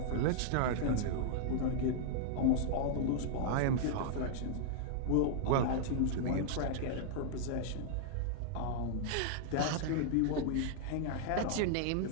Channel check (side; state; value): both; different; correlation -0.01